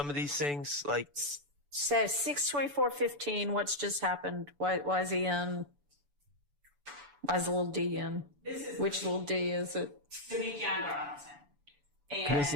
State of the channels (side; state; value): left; late; 6.9 ms